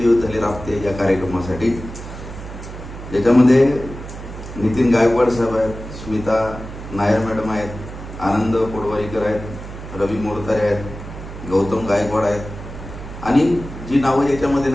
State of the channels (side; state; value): right; noise; hum, 11 dB below the sound